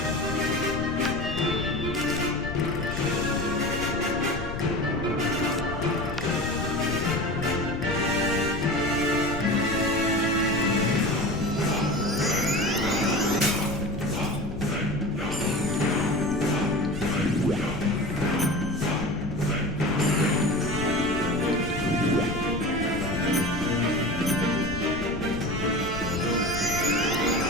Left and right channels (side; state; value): left; noise; rumble, 8 dB below the sound